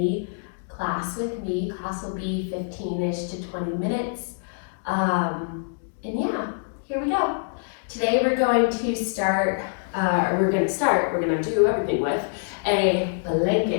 class with me. Class will be 15-ish to 20 minutes. And yeah, here we go. Today we're going to start, we're going to do everything with a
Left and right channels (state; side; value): silent; right; digital silence